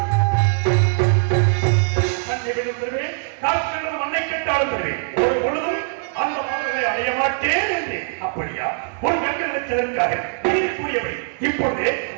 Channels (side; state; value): left; silent; 65 dB below the other